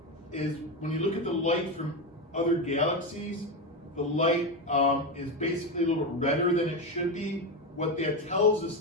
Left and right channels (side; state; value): both; normal; correlation 0.14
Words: when you look at the light from other galaxies, the light is basically a little bit redder than it should be. What that tells us